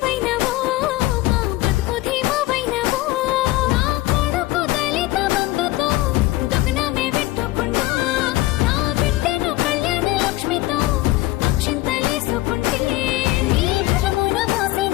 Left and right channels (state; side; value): quieter; right; 18.1 dB